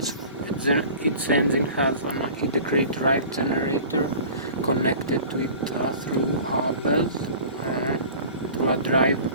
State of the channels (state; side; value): inverted; both; correlation -0.41